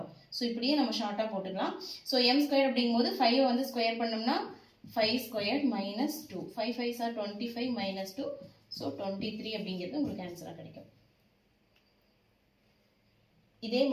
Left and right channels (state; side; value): identical; both; correlation 1.00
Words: ஸோ இப்படியே நம்ம ஷார்ட்டாக போட்டுக்கலாம். ஸோ m ஸ்கொயர் அப்படிங்கும்போது 5 வந்து ஸ்கொயர் பண்ணோம்னா 5 ஸ்கொயர் -2 5 5s are 25 -2. ஸோ 23 அப்படிங்கிறது உங்களுக்கு ஆன்சராக கிடைக்கும். இதே